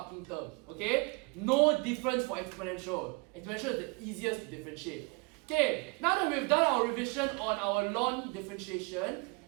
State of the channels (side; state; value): left; quieter; 29.4 dB